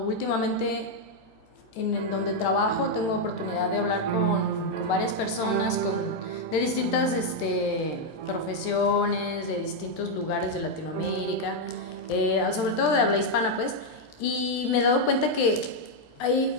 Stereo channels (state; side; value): late; right; 13 ms